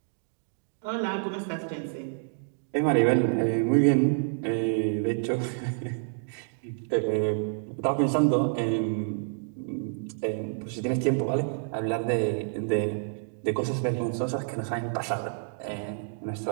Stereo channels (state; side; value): silent; left; digital silence